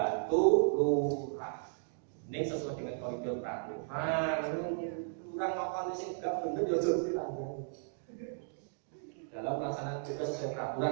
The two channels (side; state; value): left; silent; digital silence